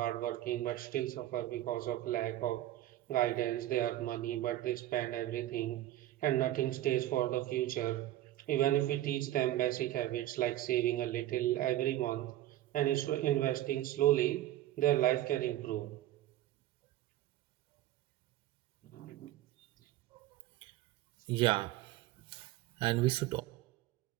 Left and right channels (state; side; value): quieter; left; 14.3 dB